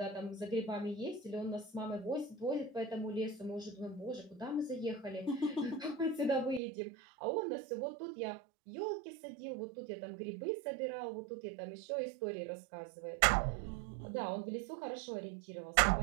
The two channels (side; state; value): left; drops out; at 6.6 s